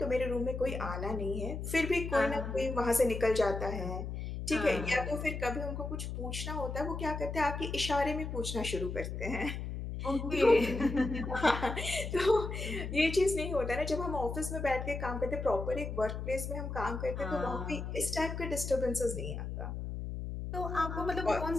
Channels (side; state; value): left; noise; hum, 5 dB below the sound